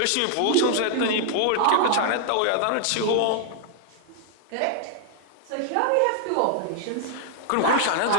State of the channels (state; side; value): different; both; correlation 0.00